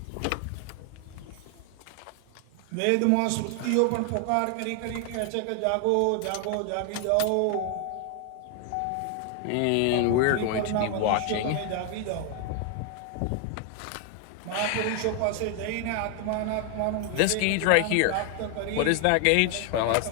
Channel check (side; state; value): both; different; correlation 0.00